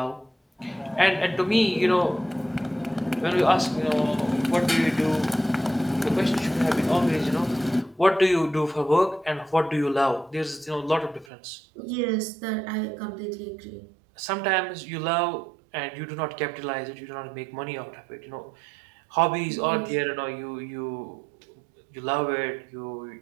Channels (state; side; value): drops out; left; at 11.2 s